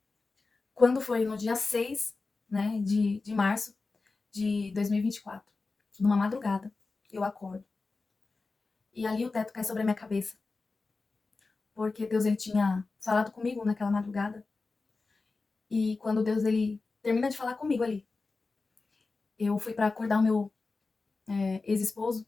quando foi no dia 6, né, de março de 2024, numa madrugada, eu acordo. E ali o teto cai sobre a minha cabeça, porque Deus ele tinha falado comigo naquela madrugada. E quando Deus ele termina de falar comigo ali, eu fui para acordar o meu ex-esposo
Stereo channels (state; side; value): quieter; right; 3.9 dB